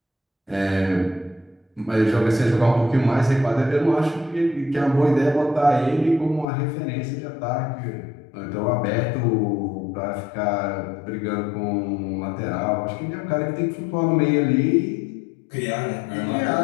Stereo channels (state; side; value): drops out; right; at 6.5 s